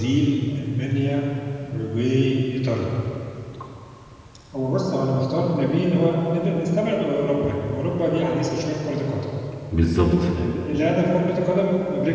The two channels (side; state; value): both; identical; correlation 1.00